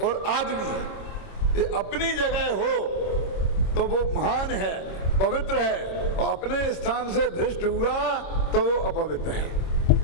और आदमी, ये अपनी जगह हो तो वो महान है, पवित्र है, और अपने स्थान से भ्रष्ट हुआ तो वो अपवित्र है।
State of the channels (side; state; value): right; late; 26 ms